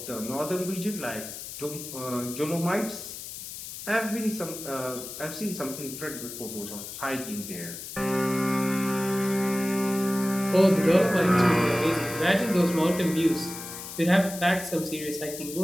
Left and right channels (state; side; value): noise; left; hiss, 10 dB below the sound